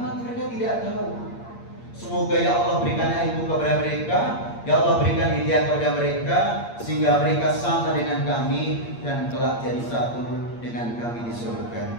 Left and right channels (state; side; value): late; right; 8.6 ms